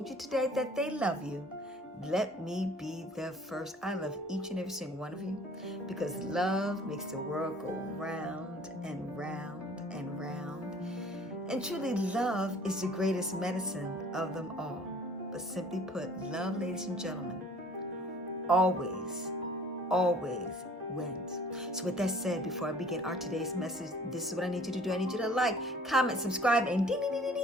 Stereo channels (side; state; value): both; normal; correlation 0.52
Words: you today that they love you, let me be the first. I love each and every single one of you because love makes the world go round and round and round. And truly, love is the greatest medicine of them all. But simply put, love, ladies and gentlemen, always wins. So with that said, before I begin our today's message, this is what I need you to do. I need you to like, comment, subscribe, and ding, ding, ding, ding,